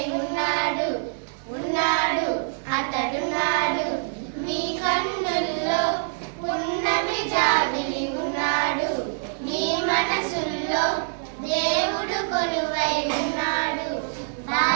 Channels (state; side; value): silent; left; digital silence